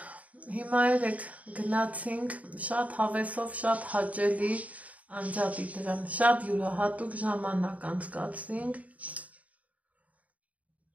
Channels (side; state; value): left; late; 0.070 ms